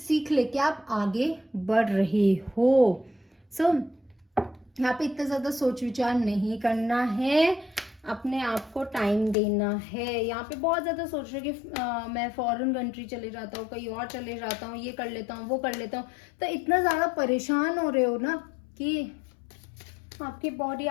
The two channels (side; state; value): right; drops out; at 9.3 s